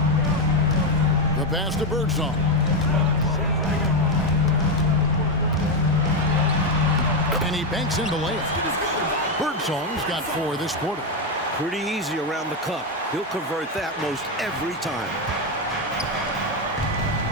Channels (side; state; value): both; normal; correlation 0.07